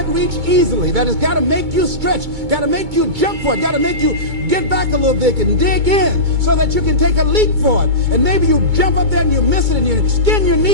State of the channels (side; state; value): left; late; 2.2 ms